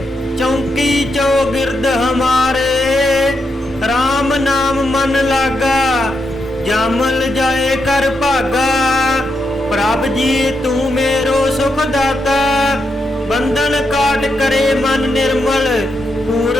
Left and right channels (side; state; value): both; normal; correlation 0.83